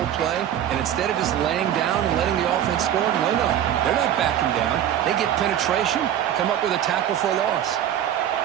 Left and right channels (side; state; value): left; quieter; 10.7 dB